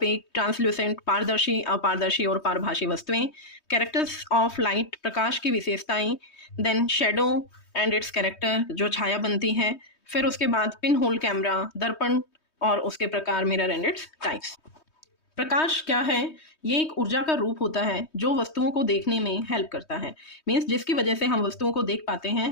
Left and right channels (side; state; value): right; late; 3.2 ms